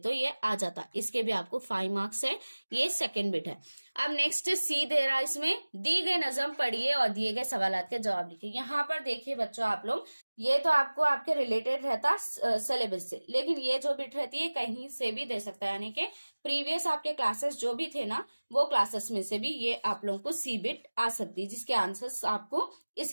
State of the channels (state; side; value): inverted; both; correlation -1.00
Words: ये आ जाता। इसके भी आपको 5 मार्क्स है। ये सेकंड बिट है। अब नेक्स्ट सी दे रहा है, इसमें दी गई नजम पढ़िए और दिए गए सवालात के जवाब लिखिए। यहाँ पर देखिए बच्चों आप लोग, ये तो आपको आपके रिलेटेड रहता सिलेबस से, लेकिन ये जो बिट रहती है कहीं से भी दे सकता है, यानी कि प्रीवियस आपके क्लासेस जो भी थे ना, वो क्लासेस में से भी ये आप लोगों को सी बिट आ सकती है, जिसके आंसर्स आपको